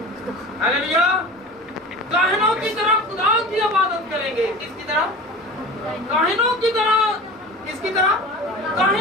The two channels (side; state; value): both; normal; correlation 0.35